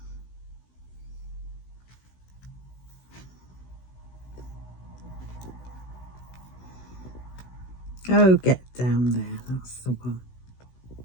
Oh, get down there, that's the one.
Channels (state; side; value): late; right; 16 ms